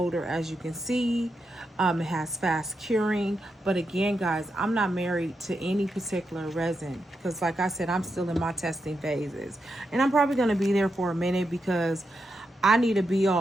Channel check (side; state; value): both; normal; correlation 0.85